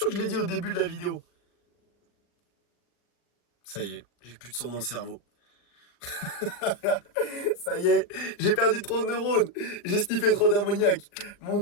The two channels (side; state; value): right; late; 40 ms